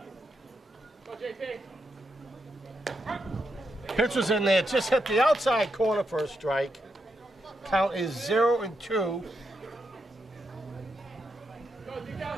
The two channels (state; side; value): normal; both; correlation 0.83